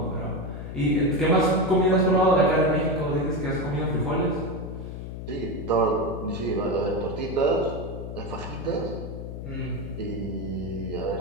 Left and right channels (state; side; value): noise; left; hum, 8 dB below the sound